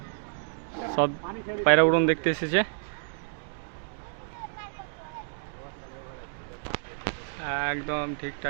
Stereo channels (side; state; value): left; silent; digital silence